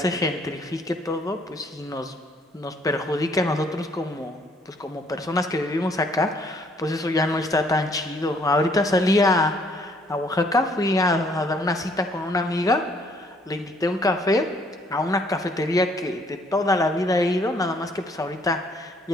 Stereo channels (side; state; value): both; normal; correlation 0.64